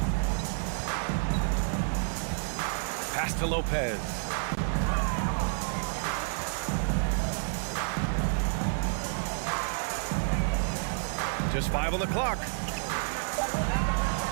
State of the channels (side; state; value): left; silent; digital silence